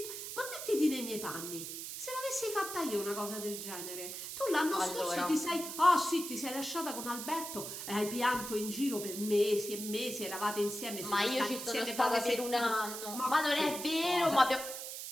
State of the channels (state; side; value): noise; right; hiss, 7 dB below the sound